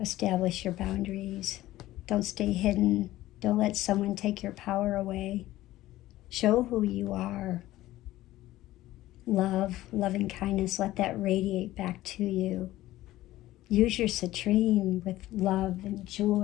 Establish your boundaries. Don't stay hidden. Don't let someone take your power away. Show who you are. Love, loving kindness, let that radiate back to you. Use your citrine with love and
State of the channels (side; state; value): right; quieter; 15.8 dB